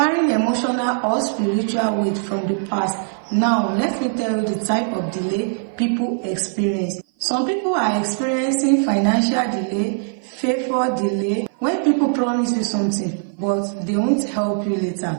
emotional or spiritual weight from the past. Now, let me tell you the type of delay people experience. Some people are experiencing financial delay, favor delay, when people promise you something but they won't help you later.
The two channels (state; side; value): silent; left; 56 dB below the other